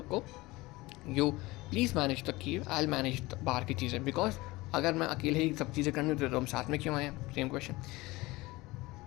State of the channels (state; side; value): quieter; right; 21.0 dB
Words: you please manage the cave, I will manage बाहर की चीज़ें, बिकॉज अगर मैं अकेले ही सब चीज़ें करनी होती तो हम साथ में क्यों आए, सेम क्वेश्चन।